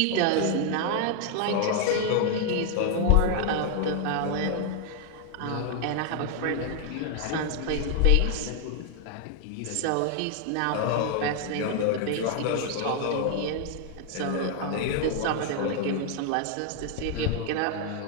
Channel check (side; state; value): both; different; correlation 0.00